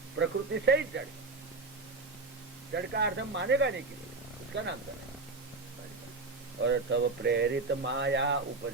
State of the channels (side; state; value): left; quieter; 3.6 dB